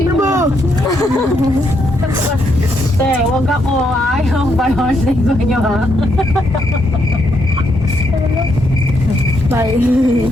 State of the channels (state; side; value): normal; both; correlation 0.77